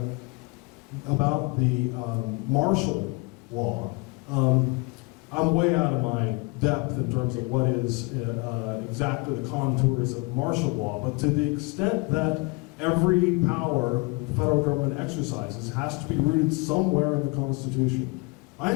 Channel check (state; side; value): quieter; right; 28.2 dB